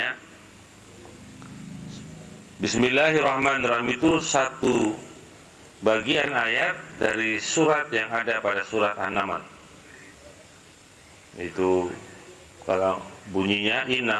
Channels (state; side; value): identical; both; correlation 1.00